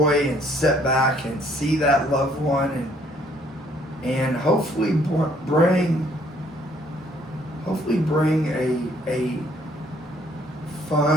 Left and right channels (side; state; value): both; normal; correlation 0.64